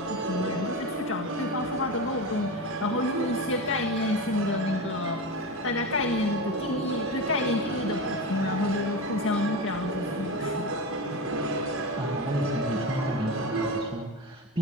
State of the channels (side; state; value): both; normal; correlation 0.22